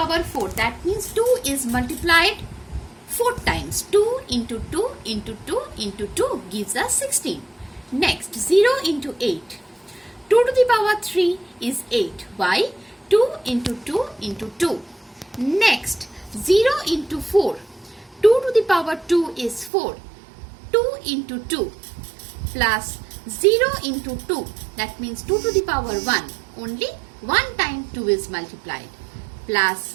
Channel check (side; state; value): left; drops out; at 19.7 s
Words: 4. That means 2 is multiplied 4 times. 2 into 2 into 2 into 2 gives us 16. Next 0 into 8. 2 to the power 3 is 8. Why? 2 into 2 into 2. Next 0 into 4. 2 to the power 2 is 4. 2 into 2 plus 0 into 2. That means 2 to the power 1. Only 1 time 2 is multiplied. Plus